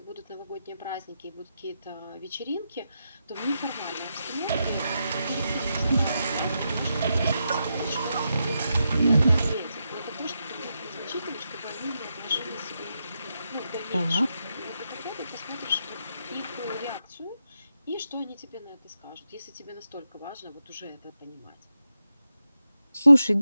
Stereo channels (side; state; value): both; inverted; correlation -0.85